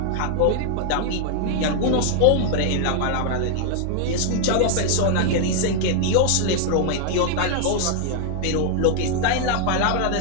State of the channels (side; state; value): both; different; correlation 0.00